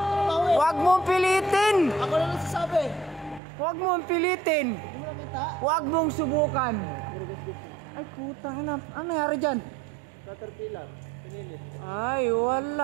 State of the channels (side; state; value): left; drops out; at 3.4 s